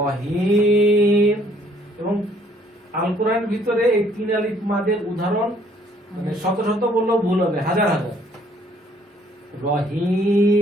এবং আল কোরআনের ভিতরে এই 3 আলিফ মাদের উদাহরণ মানে শত শত বললেও ভুল হবে, হাজার হাজার।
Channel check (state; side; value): normal; both; correlation 0.62